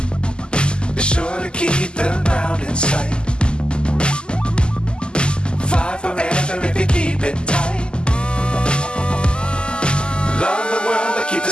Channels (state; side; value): late; right; 0.049 ms